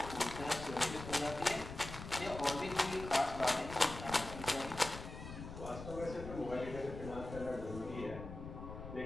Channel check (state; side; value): noise; left; rumble, 10 dB below the sound